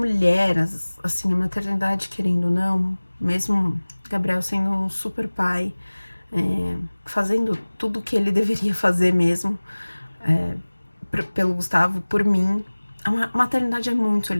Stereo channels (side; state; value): both; inverted; correlation -1.00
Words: assim, a maternidade, querendo ou não, mesmo Gabriel sendo um super pai, fazendo tudo que ele deveria fazer mesmo, pelo Gustavo, por mim, a maternidade é muito